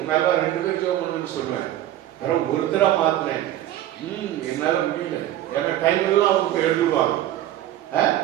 2 பேர் ஜெபம் பண்ணணும்னு சொல்லுவேன். வேற ஒருத்தரா மாத்தினேன், என்னால முடியல, ஏன்னா டைம் எல்லாம் அவங்க எழுதுவாங்க.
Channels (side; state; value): left; quieter; 13.3 dB